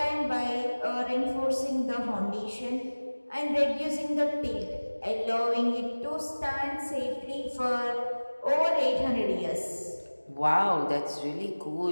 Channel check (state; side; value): inverted; both; correlation -1.00